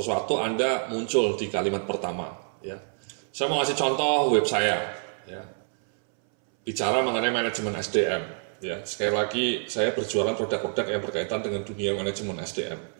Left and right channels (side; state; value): left; silent; 60 dB below the other